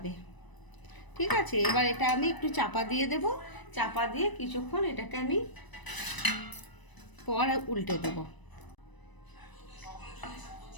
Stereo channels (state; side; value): late; right; 1.0 ms